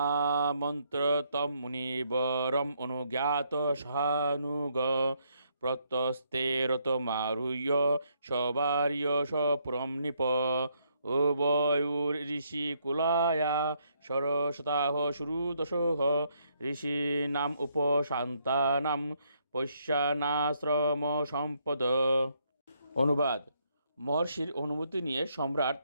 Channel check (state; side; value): inverted; both; correlation -0.73